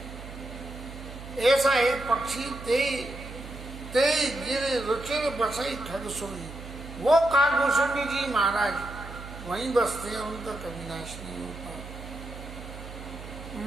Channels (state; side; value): noise; right; hum, 12 dB below the sound